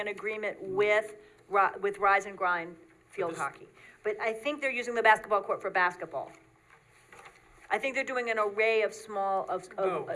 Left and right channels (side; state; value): both; identical; correlation 1.00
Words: an agreement with Rise and Grind Field this- Hockey. But I think they're using the basketball court for basketball. I think they're doing an array of